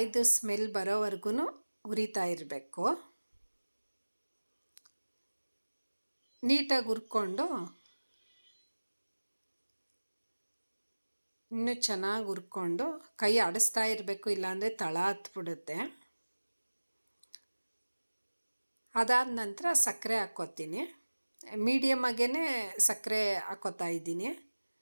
ಸ್ಮೆಲ್ ಬರೋವರೆಗೂ ಹುರಿತಾ ಇರಬೇಕು. ನೀಟಾಗಿ ಹುರ್ಕೊಂಡು ಇನ್ನೂ ಚೆನ್ನಾಗಿ ಹುರ್ಕೊಂಡು ಕೈ ಆಡಿಸ್ತಾ ಇರಬೇಕು, ಇಲ್ಲಾಂದರೆ ತಳ ಹತ್ಬಿಡುತ್ತೆ. ಅದಾದ ನಂತರ ಸಕ್ಕರೆ ಹಾಕ್ಕೋತೀನಿ. ಮೀಡಿಯಮಾಗೇ ಸಕ್ಕರೆ ಹಾಕ್ಕೋತಾ ಇದ್ದೀನಿ.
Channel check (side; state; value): both; inverted; correlation -1.00